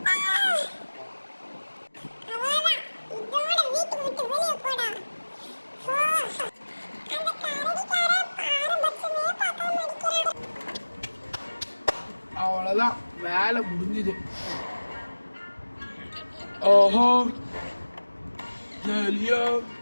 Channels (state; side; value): inverted; both; correlation -1.00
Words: அவ்வளவுதான், வேலை முடிஞ்சுது. ஓஹோ ஜலியா